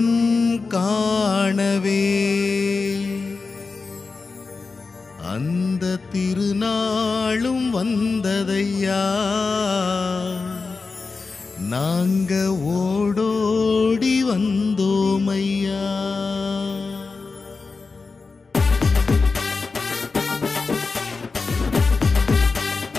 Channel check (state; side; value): quieter; right; 4.3 dB